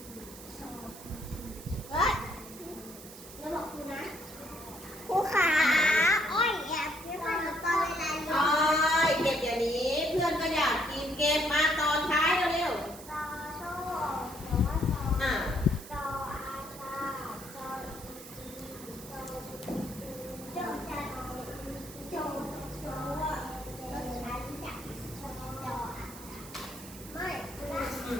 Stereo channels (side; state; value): right; noise; hiss, 16 dB below the sound